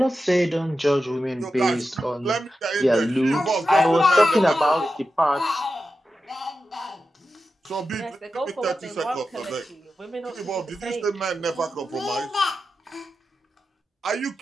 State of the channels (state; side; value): normal; both; correlation 0.91